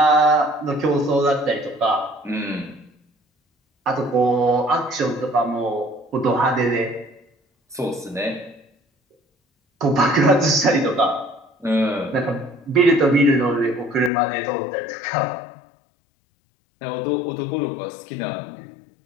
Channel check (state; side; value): drops out; right; at 14.1 s